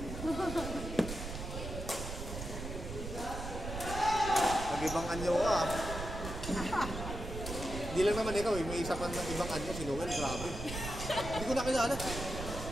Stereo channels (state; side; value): noise; right; rumble, 7 dB below the sound